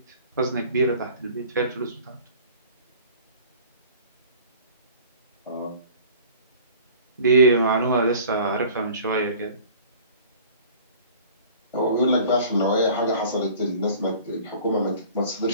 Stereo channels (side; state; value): both; inverted; correlation -0.46